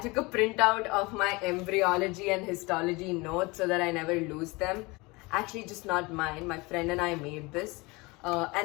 a printout of my embryology and histology notes so that I never lose them. Actually, just not mine. My friend and I made this.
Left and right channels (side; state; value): right; quieter; 24.7 dB